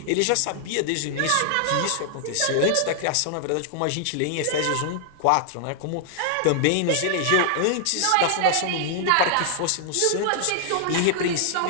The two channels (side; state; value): both; different; correlation 0.00